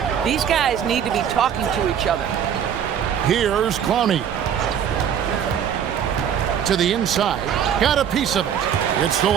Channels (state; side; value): quieter; left; 8.7 dB